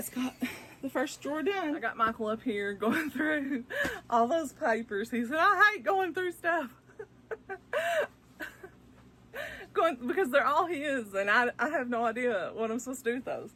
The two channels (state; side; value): identical; both; correlation 1.00